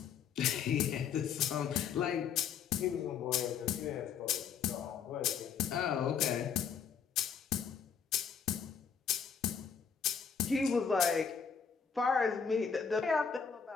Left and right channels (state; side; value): quieter; right; 6.9 dB